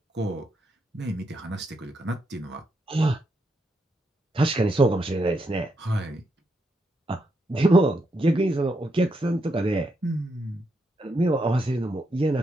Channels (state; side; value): normal; both; correlation 0.81